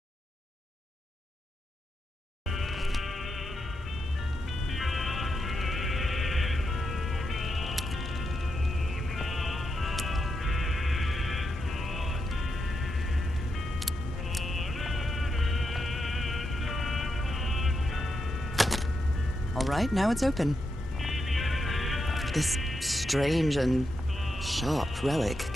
All right, now it's open. This strange and sharp relic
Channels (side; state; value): both; normal; correlation 0.85